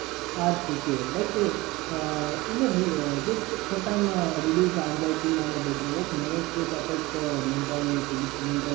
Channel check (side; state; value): left; quieter; 21.2 dB